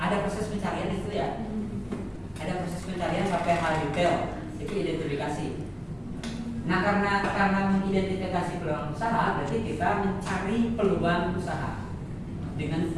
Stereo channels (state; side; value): identical; both; correlation 1.00